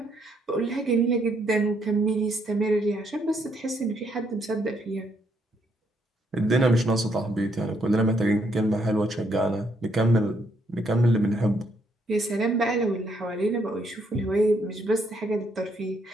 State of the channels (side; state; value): both; normal; correlation 0.72